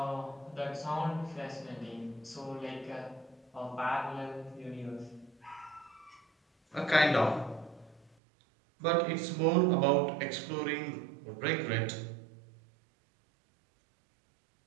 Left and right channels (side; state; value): left; drops out; at 8.1 s